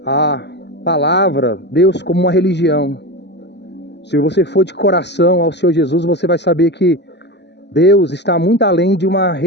a palavra Deus como uma religião. Se você for de coração ao Senhor Jesus, você vai saber que Deus está muito além de uma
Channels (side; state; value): right; late; 0.50 ms